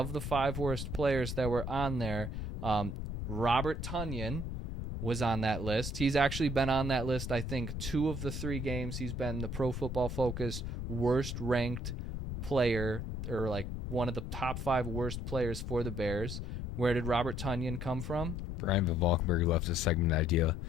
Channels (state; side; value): noise; left; rumble, 4 dB below the sound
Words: the 5 worst players that were on there, Robert Tonyan was on that list. He's actually been on that list, I think, 2 of the 3 games. He's been the Pro Football Focus worst ranked player, or like one of the top 5 worst players for the Bears. Where did Robert Tonyan come from? Brian Valkenburg left a segment idea.